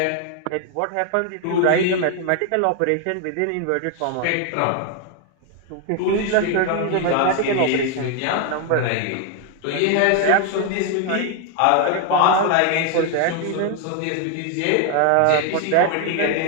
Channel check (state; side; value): different; both; correlation 0.01